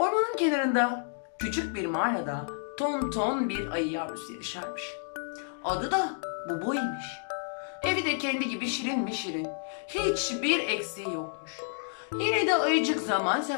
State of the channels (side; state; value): right; silent; digital silence